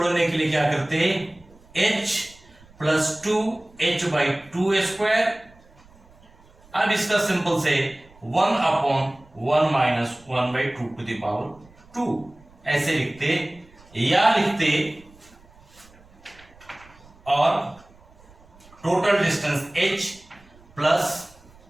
के लिए क्या करते हैं, h plus 2h by 2 square. अब इसका सिंपल से 1 upon 1 minus 1 by 2 to the power 2 ऐसे लिखते, या लिखते और टोटल डिस्टेंस h प्लस,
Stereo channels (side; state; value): right; noise; rumble, 26 dB below the sound